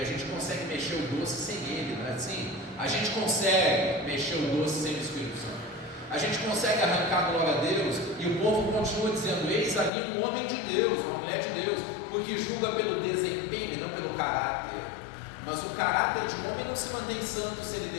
gente consegue mexer o doce sem ele, não é assim? A gente consegue mexer o doce sem o Espírito Santo. A gente consegue arrancar a glória a Deus, e o povo continua dizendo: eis ali um homem de Deus, uma mulher de Deus, porque julga pelo desempenho e não pelo caráter. Mas o caráter de um homem não se mantém santo se ele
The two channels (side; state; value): right; drops out; at 9.9 s